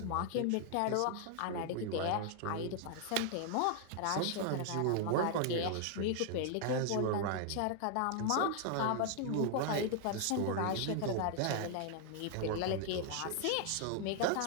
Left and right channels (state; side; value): different; both; correlation 0.00